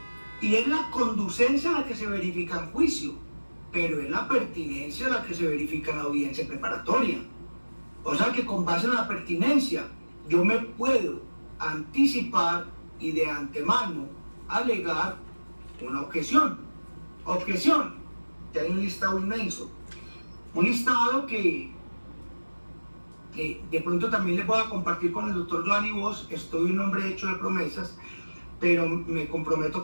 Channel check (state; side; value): inverted; both; correlation -1.00